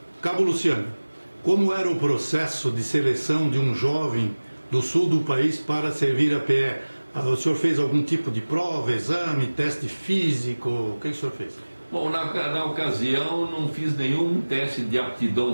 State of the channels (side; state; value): both; inverted; correlation -1.00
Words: Cabo Luciano, como era o processo de seleção de um jovem do sul do país para servir a PE? O senhor fez algum tipo de prova, exame, teste físico? O que o senhor fez? Bom, na ocasião não fiz nenhum teste de